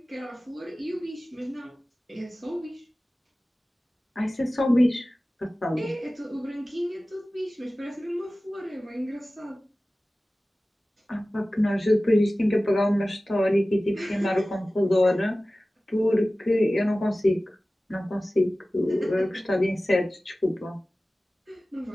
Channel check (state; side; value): normal; both; correlation 0.97